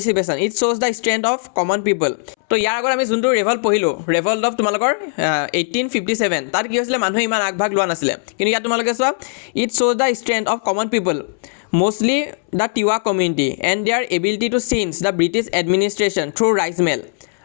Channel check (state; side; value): silent; right; 67 dB below the other